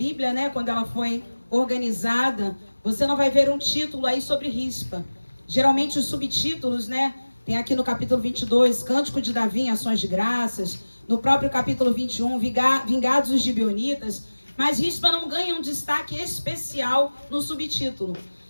né, quando ela foi organizada, você não vai ver um título aí sobre Rispa. Geralmente os subtítulos, né, tem aqui no capítulo 22, Cântico de Davi em Ações de Graças, no próprio capítulo 21, Vingados os Gibeonitas, mas Rispa não ganha um destaque especial no subtítulo.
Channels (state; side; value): inverted; both; correlation -1.00